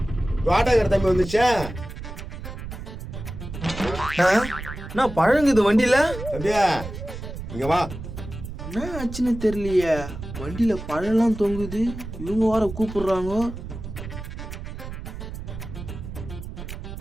வாடகை தம்பி வந்துச்சா? நான் பழங்குது வண்டியில. தம்பியா இங்க வா. என்ன ஆச்சுன்னு தெரியலையே, வண்டியில பழம்லாம் தொங்குது, இவங்க வர கூப்பிடுறாங்க.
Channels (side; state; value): right; noise; rumble, 9 dB below the sound